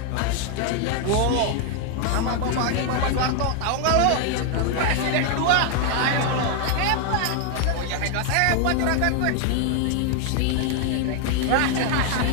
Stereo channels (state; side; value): different; both; correlation 0.00